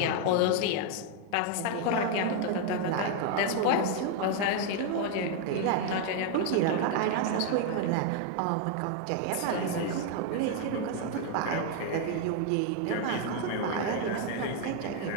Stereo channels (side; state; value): both; different; correlation 0.00